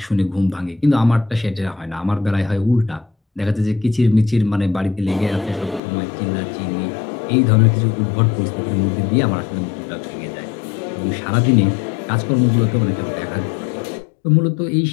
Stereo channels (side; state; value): right; drops out; at 5.8 s